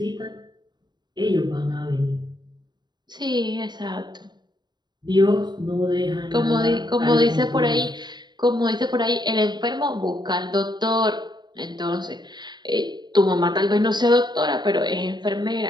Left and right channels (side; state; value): left; late; 0.21 ms